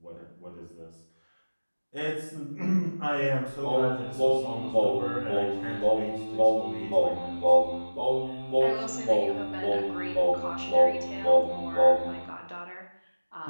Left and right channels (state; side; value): inverted; both; correlation -1.00